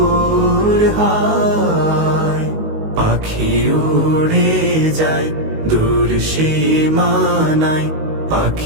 হয়। পাখি উড়ে যায় দূর সীমানায়,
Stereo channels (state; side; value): late; left; 19 ms